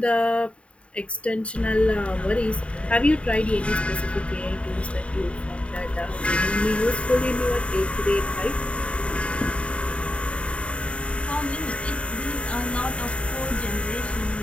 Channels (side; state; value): right; late; 0.061 ms